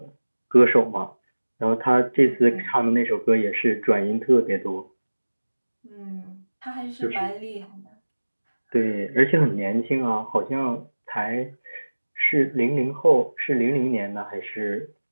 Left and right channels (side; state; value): both; inverted; correlation -1.00